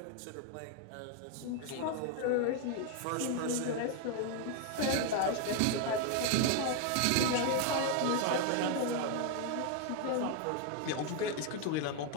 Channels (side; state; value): both; different; correlation 0.01